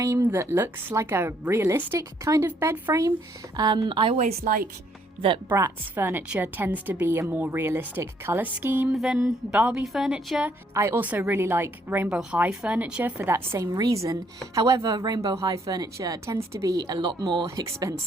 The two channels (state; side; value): normal; both; correlation 0.69